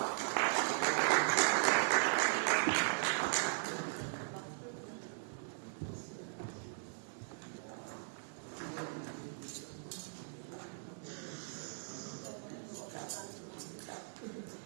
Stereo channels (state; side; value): silent; left; digital silence